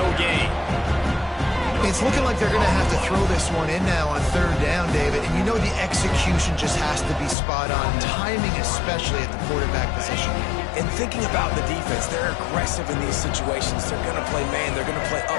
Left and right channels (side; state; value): right; drops out; at 7.4 s